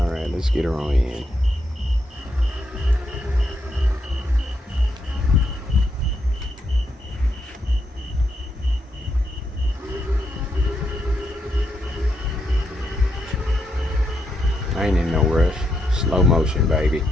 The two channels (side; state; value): both; normal; correlation 0.80